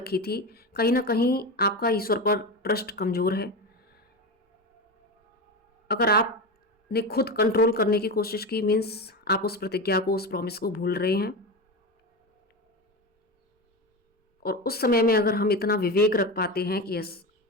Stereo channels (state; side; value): normal; both; correlation 0.21